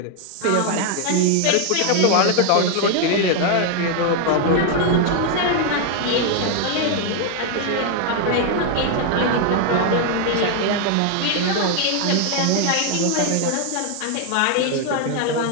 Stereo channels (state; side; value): different; both; correlation 0.00